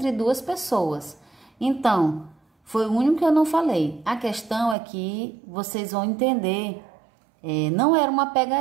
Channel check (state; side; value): drops out; left; at 4.8 s